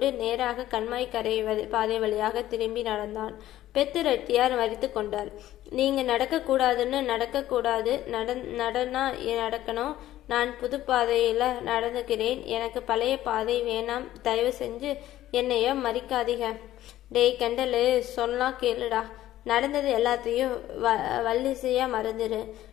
நேராக கண்மாய் கரை பாதை வழியாக திரும்பி நடந்தான். பெத்து ரெட்டியார் மறித்து கொண்டார். நீங்க நடக்கக்கூடாதுன்னு நடக்கக்கூடாது, நடக்கணும். நான் புது பாதையில நடந்துக்கிறேன். எனக்கு பழைய பாதை வேணாம். தயவு செஞ்சு என்னைய மறிக்காதீங்க. டேய் கண்டலு, சொன்னா கேளுடா. நடந்தது எல்லாத்தையும் வள்ளிசையா மறந்துடு.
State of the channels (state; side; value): quieter; right; 13.9 dB